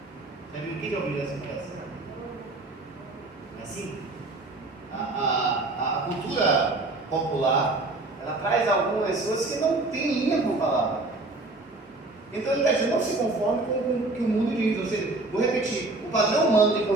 Já viu? Quem já ouviu essa expressão? É assim? A cultura popular, ela traz algumas pessoas que não têm linha com a palavra. Então ele está dizendo, não se conforme com o que o mundo diz. Ou seja, vou repetir, o padrão humano de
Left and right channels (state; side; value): quieter; left; 3.1 dB